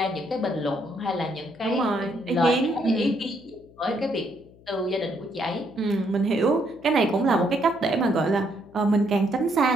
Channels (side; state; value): left; noise; hum, 25 dB below the sound